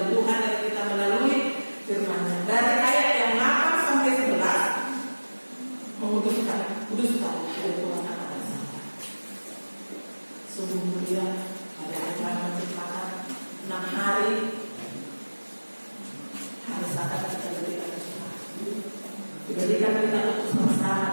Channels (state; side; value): inverted; both; correlation -1.00